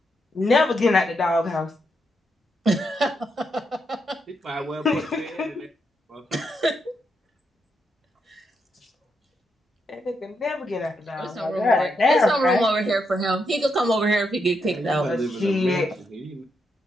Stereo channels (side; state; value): both; normal; correlation 0.81